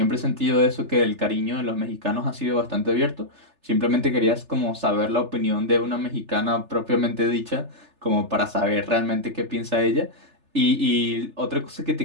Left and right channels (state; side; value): late; left; 3.4 ms